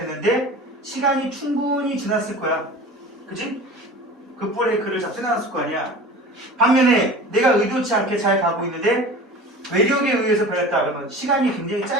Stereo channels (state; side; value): normal; both; correlation 0.38